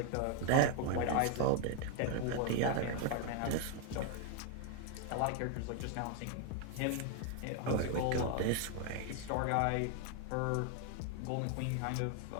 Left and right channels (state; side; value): different; both; correlation 0.01